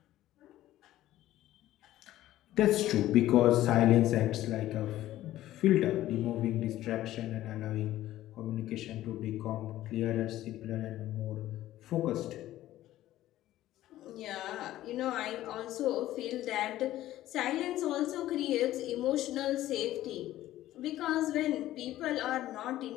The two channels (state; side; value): quieter; right; 14.4 dB